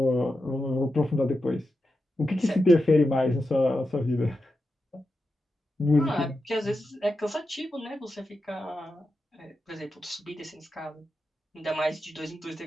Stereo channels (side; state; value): both; normal; correlation 0.89